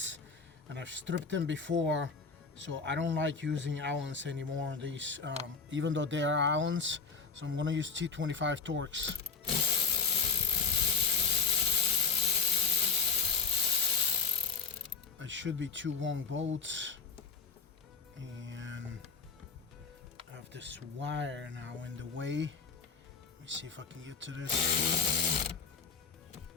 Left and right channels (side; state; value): right; quieter; 5.1 dB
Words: and I've stripped them before, so I don't like using Allens anymore on these, even though they are Allens. So I'm going to use T25 Torx. It should be two long bolts, and I have this wire now in the way. Let me see if I can get to this.